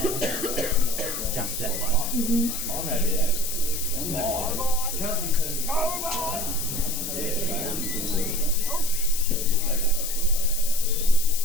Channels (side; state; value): left; noise; hiss, 4 dB below the sound